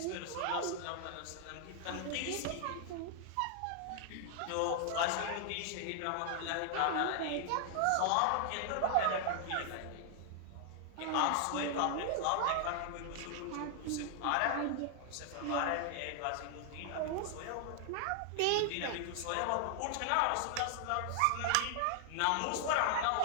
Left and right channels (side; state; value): both; different; correlation 0.00